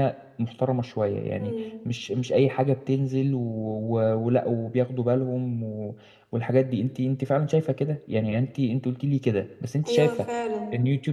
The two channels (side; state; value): both; identical; correlation 1.00